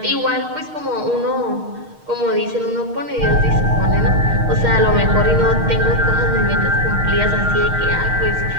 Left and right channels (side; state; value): left; late; 6.5 ms